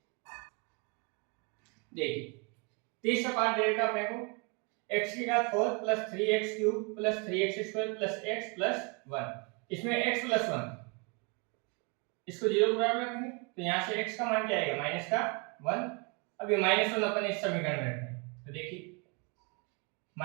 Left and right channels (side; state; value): left; quieter; 32.9 dB